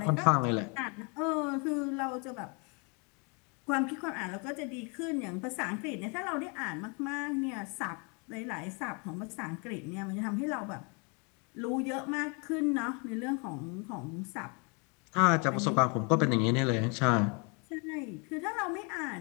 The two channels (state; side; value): quieter; right; 33.5 dB